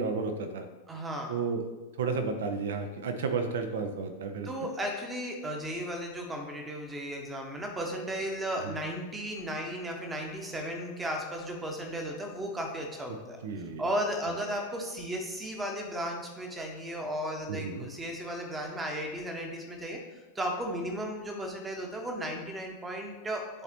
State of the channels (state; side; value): normal; both; correlation 0.24